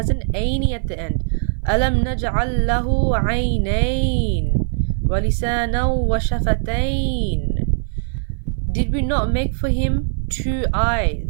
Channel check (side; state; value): left; silent; 58 dB below the other